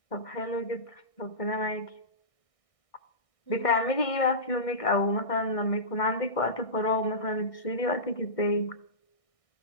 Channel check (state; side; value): late; right; 1.6 ms